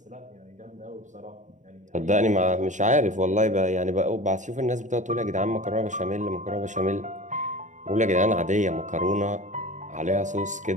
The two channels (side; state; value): left; late; 0.36 ms